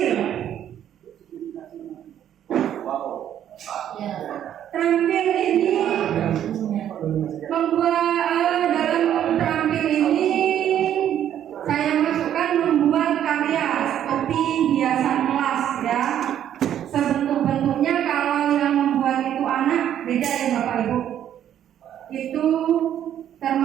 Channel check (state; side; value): quieter; left; 10.5 dB